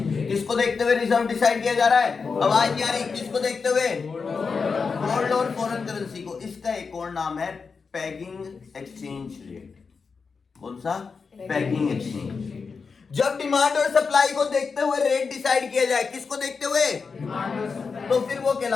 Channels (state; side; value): quieter; right; 5.1 dB